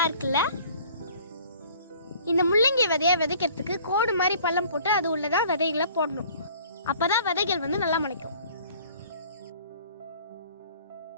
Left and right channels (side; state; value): both; inverted; correlation -0.53